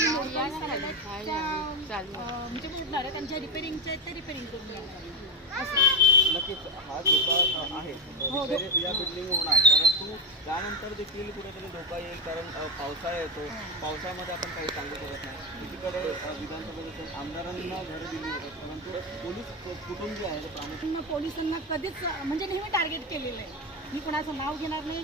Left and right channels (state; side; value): normal; both; correlation 0.12